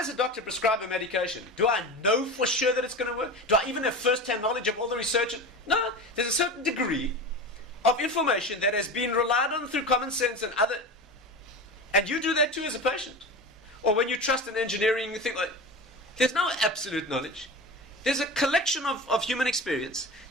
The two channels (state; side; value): normal; both; correlation 0.29